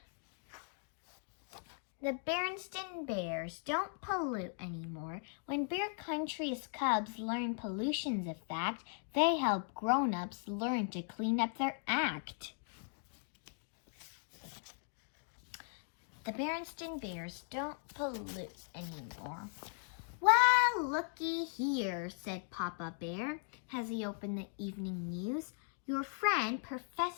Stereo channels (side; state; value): right; silent; 52 dB below the other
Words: The Berenstain Bears don't pollute anymore. When Bear Country's cubs learn pollution's a fact, they help grown-ups learn to clean up their act. The Berenstain Bears don't pollute anymore. Well, looky here, said Papa Bear as he opened the evening news. Your friend,